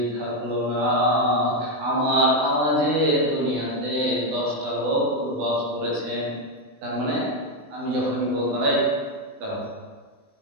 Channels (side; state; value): left; late; 20 ms